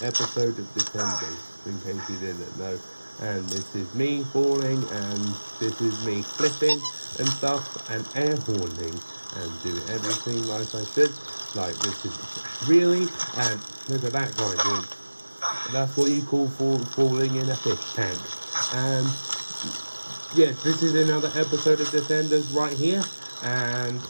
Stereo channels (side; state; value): both; inverted; correlation -1.00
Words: episode of Descenders, in case you didn't know. And this is me falling, and this is me flipping and stuff, and air horning, and doing everything like I should. Like this is really, and look at that guy doing. That's what you call falling in a fish tank. And yes, this is another episode of Descenders right here, and